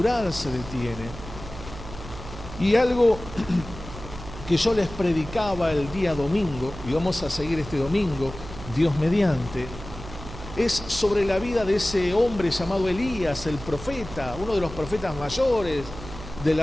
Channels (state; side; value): noise; right; hum, 13 dB below the sound